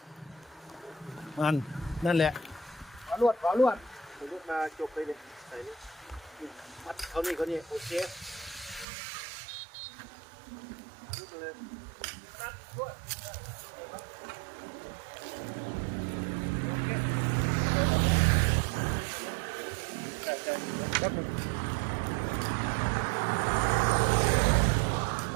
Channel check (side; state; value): left; drops out; at 8.8 s